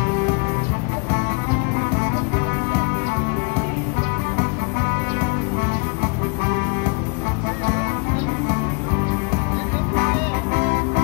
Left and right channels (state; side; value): quieter; right; 32.2 dB